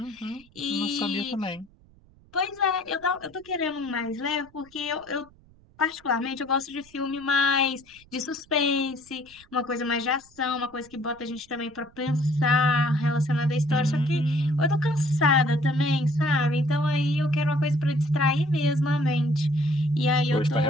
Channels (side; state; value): right; noise; rumble, 28 dB below the sound